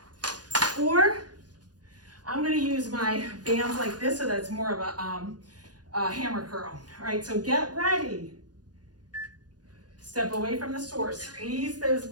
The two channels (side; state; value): left; late; 0.69 ms